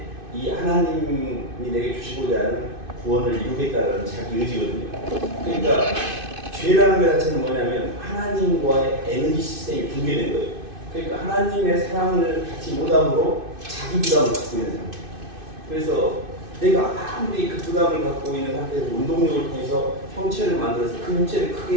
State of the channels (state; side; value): late; left; 2.5 ms